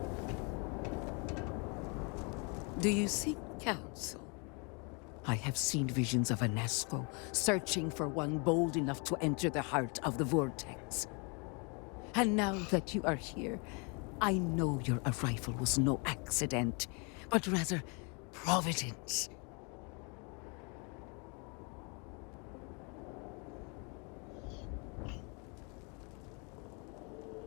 Do you seek counsel? I have seen visions of Anasco searching for one bold enough to enter the heart of the vortex. And now that you are here, I know your arrival was no accident, but rather providence.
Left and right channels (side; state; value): right; quieter; 33.5 dB